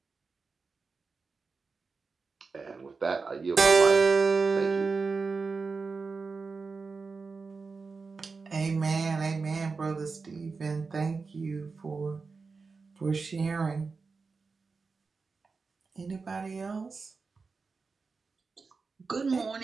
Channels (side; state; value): left; quieter; 4.5 dB